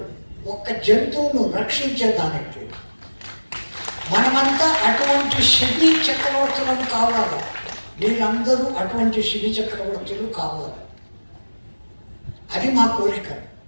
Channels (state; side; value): inverted; both; correlation -1.00